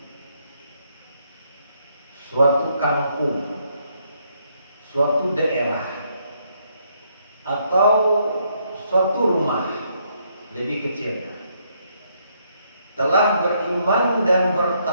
suatu kampung, suatu daerah, atau suatu rumah lebih kecilnya telah beriman dan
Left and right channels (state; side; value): inverted; both; correlation -0.73